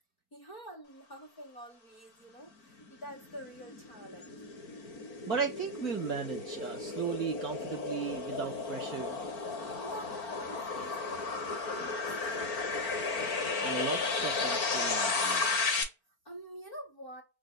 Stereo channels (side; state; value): right; late; 4.4 ms